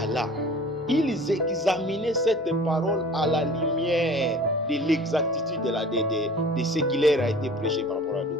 là. Ils examinaient cette parole à la lumière de l'exactitude de ce qui leur a été prêché par rapport à la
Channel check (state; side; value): normal; both; correlation 0.44